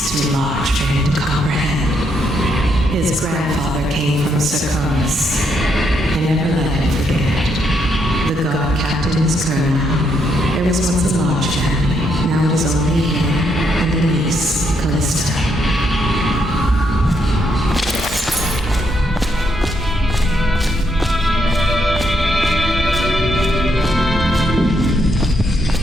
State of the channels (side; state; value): both; normal; correlation 0.76